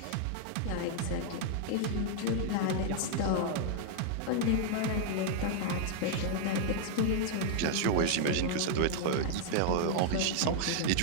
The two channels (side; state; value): both; different; correlation -0.01